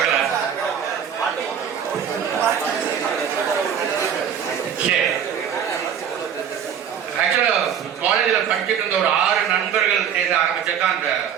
ஆக்சுவலா காலேஜ்ல படிச்சுட்டு இருந்த ஒரு 6 நண்பர்கள் சேர்ந்து ஆரம்பிச்சதான் அந்த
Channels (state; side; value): quieter; left; 8.4 dB